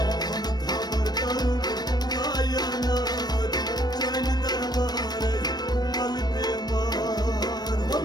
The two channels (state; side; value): late; right; 0.19 ms